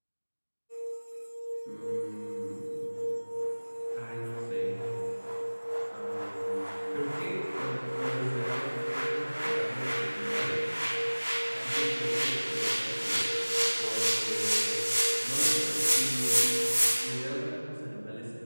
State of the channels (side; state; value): both; inverted; correlation -1.00